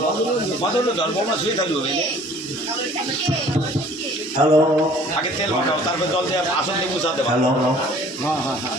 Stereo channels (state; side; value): normal; both; correlation 0.52